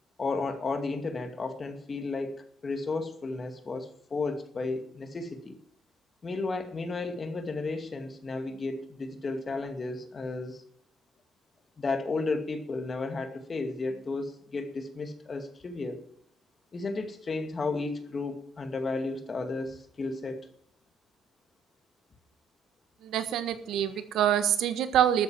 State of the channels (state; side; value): normal; both; correlation 0.68